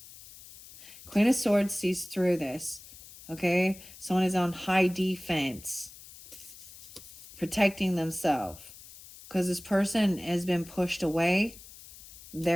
Queen of Swords sees through this. Okay, someone is on high defense, protecting themselves, because this person has been pushed away.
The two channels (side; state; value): left; noise; hiss, 18 dB below the sound